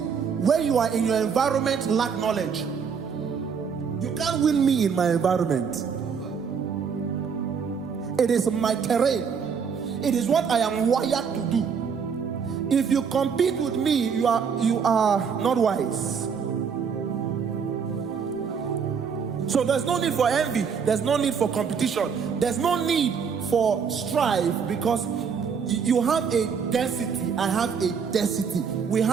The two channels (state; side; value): quieter; left; 6.4 dB